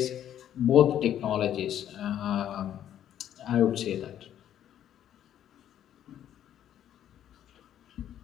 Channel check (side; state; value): right; quieter; 10.7 dB